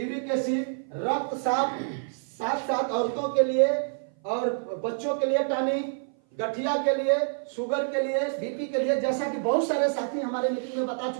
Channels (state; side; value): silent; left; 57 dB below the other